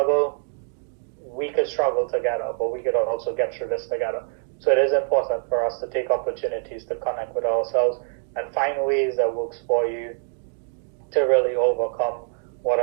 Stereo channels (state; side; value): silent; left; digital silence